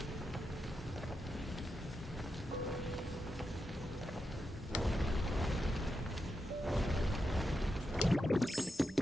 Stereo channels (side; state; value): both; normal; correlation 0.87